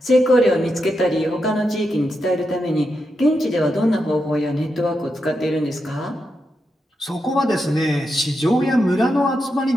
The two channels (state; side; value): normal; both; correlation 0.85